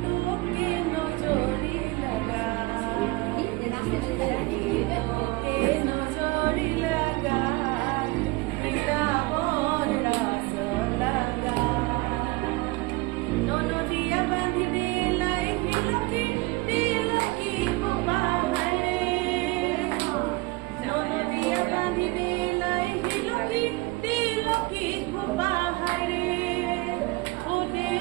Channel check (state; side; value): quieter; left; 23.2 dB